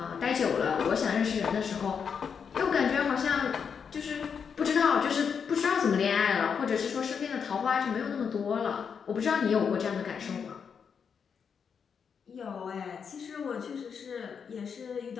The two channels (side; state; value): right; quieter; 6.6 dB